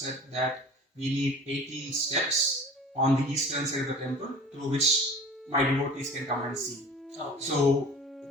that we need 18 steps on the eastern side of the temple through which my devotees can come and see. Okay. So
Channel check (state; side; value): normal; both; correlation 0.42